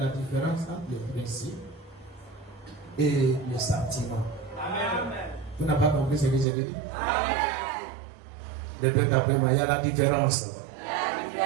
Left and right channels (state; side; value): drops out; left; at 6.5 s